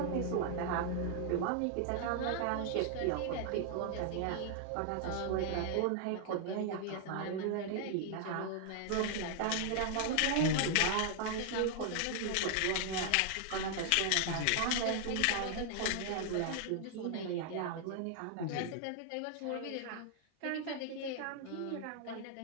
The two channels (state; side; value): different; both; correlation 0.00